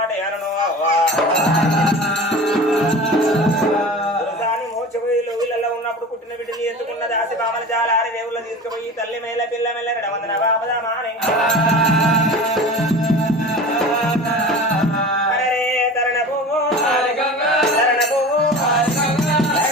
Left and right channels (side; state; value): both; normal; correlation 0.35